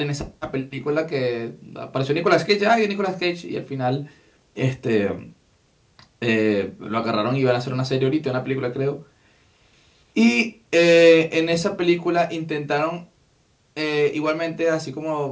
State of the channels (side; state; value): both; identical; correlation 1.00